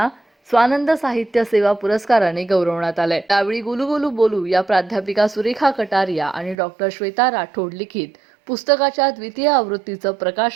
स्वानंद साहित्य सेवा पुरस्काराने गौरवण्यात आले। यावेळी गुलू गुलू बोलू या प्राध्यापिका सुरेखा कटारिया आणि डॉक्टर श्वेता राठोड लिखित पुस्तकाच्या द्वितीय आवृत्तीचं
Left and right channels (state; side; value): drops out; left; at 6.6 s